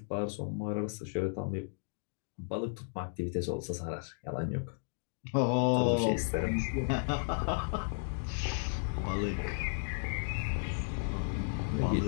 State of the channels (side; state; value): right; silent; digital silence